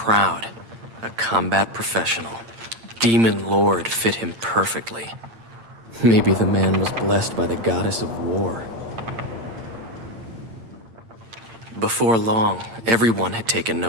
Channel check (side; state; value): left; late; 8.8 ms